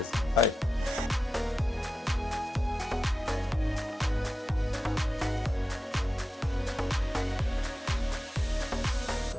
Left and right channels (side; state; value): both; normal; correlation 0.90